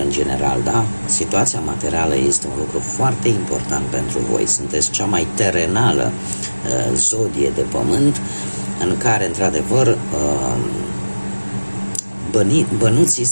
general, da? Situația materială este un lucru foarte important pentru voi. Sunteți cea mai terenală zodie de pământ, în care, într-adevăr, bănuții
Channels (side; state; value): both; inverted; correlation -1.00